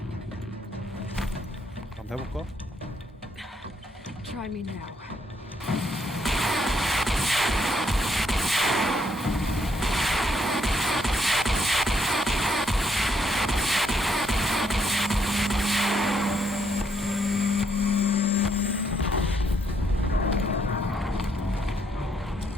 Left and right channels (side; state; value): both; normal; correlation 0.73